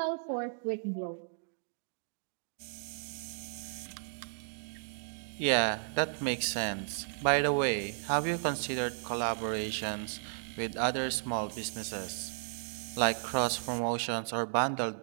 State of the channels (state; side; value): silent; left; digital silence